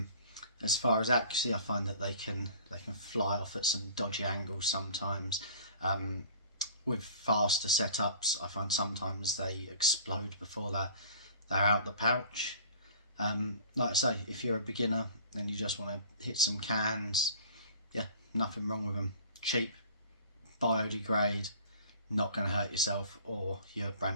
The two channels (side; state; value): both; inverted; correlation -0.46